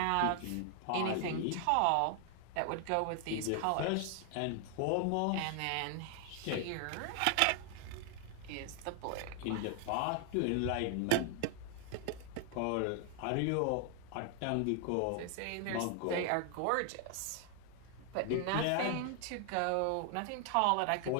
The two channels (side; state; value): both; different; correlation 0.00